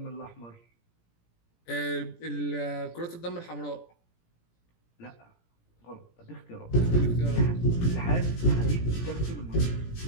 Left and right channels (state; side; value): late; right; 17 ms